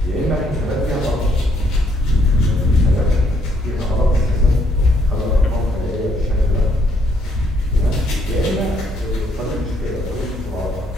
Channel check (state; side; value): normal; both; correlation 0.70